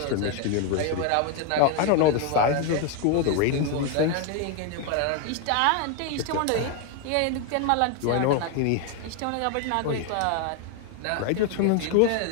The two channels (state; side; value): different; both; correlation 0.01